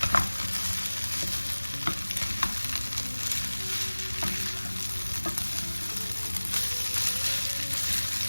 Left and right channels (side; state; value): both; inverted; correlation -1.00